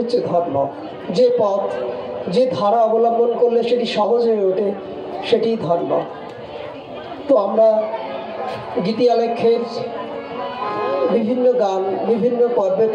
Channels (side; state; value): both; identical; correlation 1.00